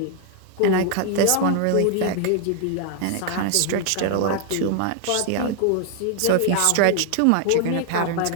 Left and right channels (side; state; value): both; different; correlation 0.00